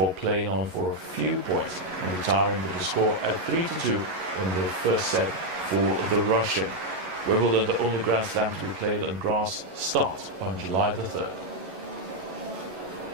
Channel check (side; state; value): left; late; 11 ms